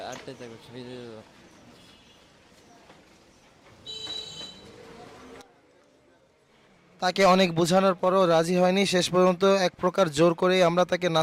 8টায় যাবো, ফিরে যাবো। তাকে অনেক বোঝানোর পরও রাজি হয়নি। শেষ পর্যন্ত এক প্রকার জোর করেই আমরা তাকে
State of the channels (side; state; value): both; identical; correlation 1.00